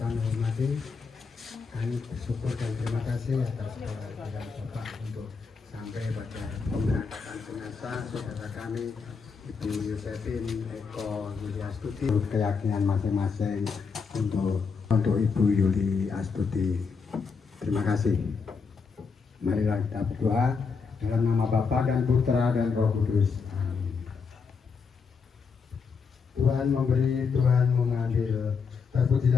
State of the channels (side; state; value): right; quieter; 5.3 dB